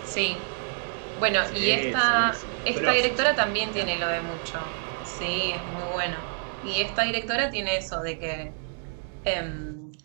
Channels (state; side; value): silent; left; 60 dB below the other